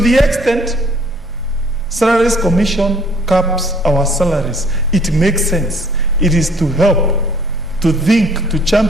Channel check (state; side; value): normal; both; correlation 0.59